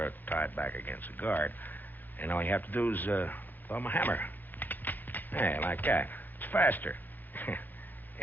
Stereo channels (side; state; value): right; late; 0.086 ms